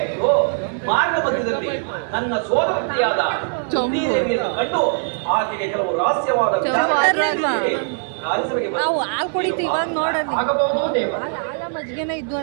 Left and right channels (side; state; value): left; silent; 65 dB below the other